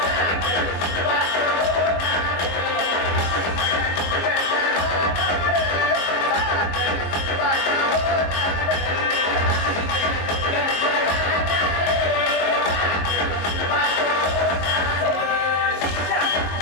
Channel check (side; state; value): right; late; 22 ms